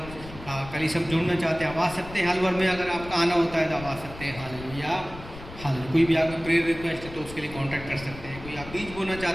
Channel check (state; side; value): noise; left; rumble, 14 dB below the sound